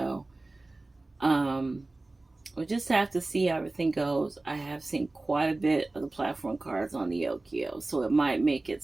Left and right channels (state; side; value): quieter; left; 3.0 dB